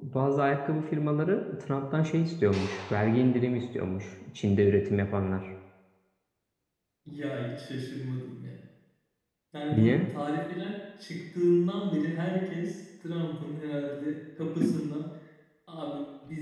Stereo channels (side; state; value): both; identical; correlation 1.00